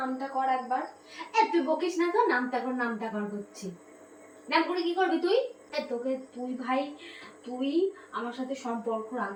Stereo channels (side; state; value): both; identical; correlation 1.00